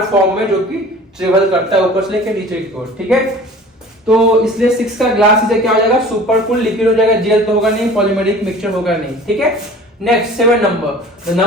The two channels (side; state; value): both; normal; correlation 0.44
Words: फॉर्म में जो कि ट्रेवल करता है ऊपर से लेकर नीचे की ओर। ठीक है, तो इसलिए 6 का ग्लास इसे क्या हो जाएगा, सुपर कूल लिक्विड हो जाएगा, जेल तो होगा नहीं, पॉलीमेरिक मिक्सचर होगा नहीं। ठीक है, next 7 number, the